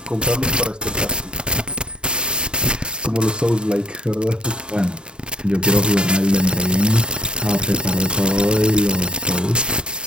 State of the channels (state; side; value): late; left; 0.050 ms